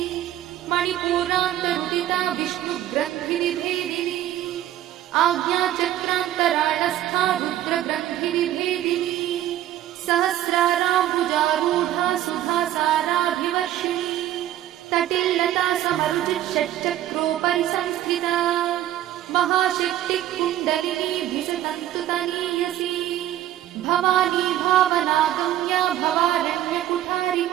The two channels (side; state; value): left; quieter; 12.9 dB